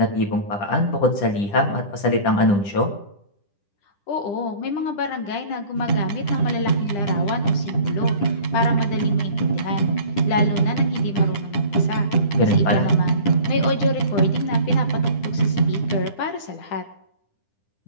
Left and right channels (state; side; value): late; right; 9.9 ms